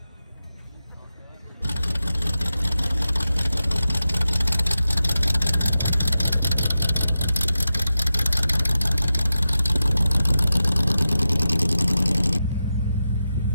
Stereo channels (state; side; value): inverted; both; correlation -0.91